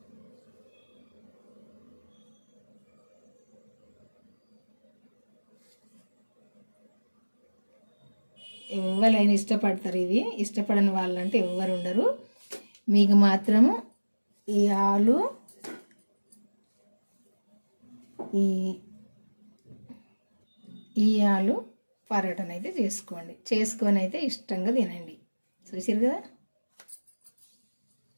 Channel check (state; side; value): inverted; both; correlation -1.00